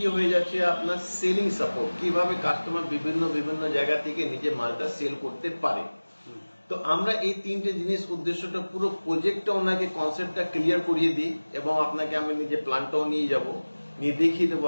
হয়ে যাচ্ছে আপনার সেলিং সাপোর্ট, কিভাবে কাস্টমার বিভিন্ন জায়গা থেকে নিজের মালটা সেল করতে পারে। তো আমরা এই 3টে জিনিস উদ্দেশ্যটা, পুরো প্রজেক্টটা ওনাকে কনসেপ্টটা ক্লিয়ার করিয়ে দিই এবং আপনাকে আমি নিজে প্ল্যানটাও নিয়ে যাব, নিয়ে দেখিয়ে দেবো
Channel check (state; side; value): inverted; both; correlation -1.00